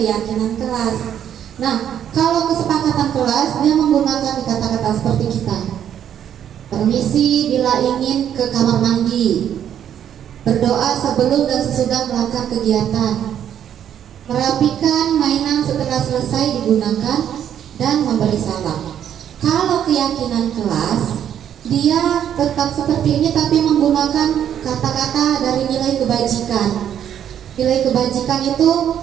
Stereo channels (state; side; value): quieter; left; 9.7 dB